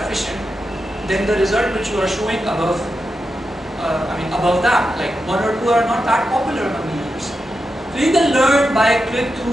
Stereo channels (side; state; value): both; normal; correlation 0.88